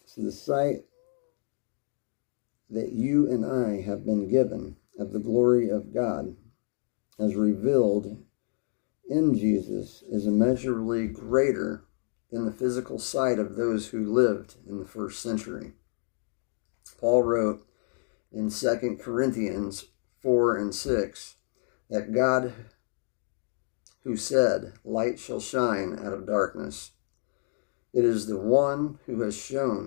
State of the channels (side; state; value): right; silent; 59 dB below the other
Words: So the sight that you and I have been given of the glory of God as revealed in Jesus is immeasurably greater than the physical sight of those who lived in the first century. Paul wrote in 2 Corinthians 4 and 6 that God, who said, light shall shine out of darkness, it is the one who has